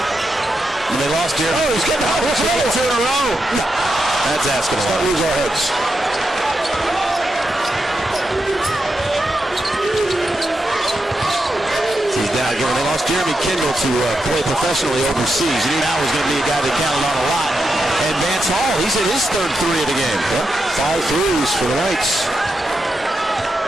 And they lost here. Oh, he's getting hot. Here's another 2 in a row. No. That's asking a lot. Let's not lose our heads. He's down again. When they lost Jeremy Kendall to play professionally overseas, you knew that was going to be a guy they counted on a lot. And Vance Hall, he's hit his third three of the game. Yep, 5 threes for the Knights.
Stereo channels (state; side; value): normal; both; correlation 0.86